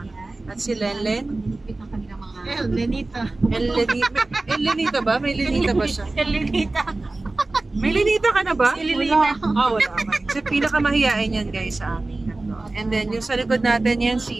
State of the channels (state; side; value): quieter; left; 3.1 dB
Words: At si Lenlen. Lenita. Lenita ba? May Lenita ba siya? Lenita. May Lenita ka na ba? Wala. Wala. So, pinakamahiyain yan guys sa amin. And then, yung sa likod natin yan,